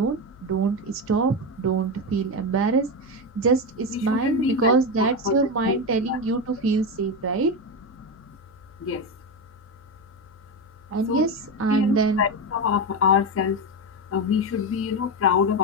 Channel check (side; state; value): left; noise; hum, 26 dB below the sound